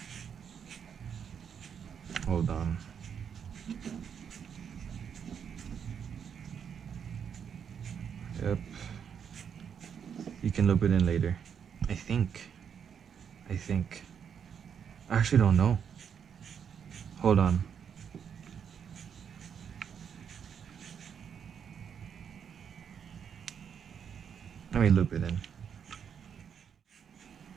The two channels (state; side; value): quieter; left; 7.6 dB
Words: Hold on. Yep. You can loop it in later. I think. I actually don't know. Hold on. Let me loop it in.